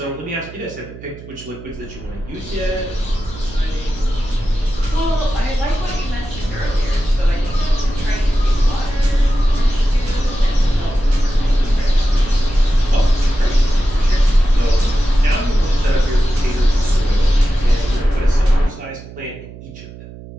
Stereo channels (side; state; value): right; noise; hum, 16 dB below the sound